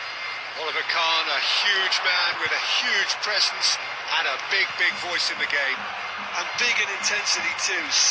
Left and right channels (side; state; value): both; identical; correlation 1.00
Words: Oliver Kahn, a huge man with a huge presence and a big voice in the game. And big in intensity too,